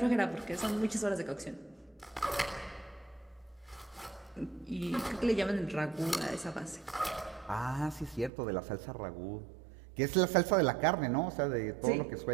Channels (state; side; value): drops out; left; at 8.3 s